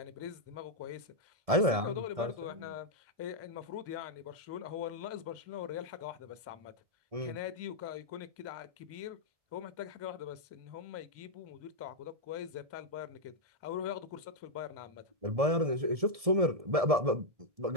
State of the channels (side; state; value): left; late; 1.7 ms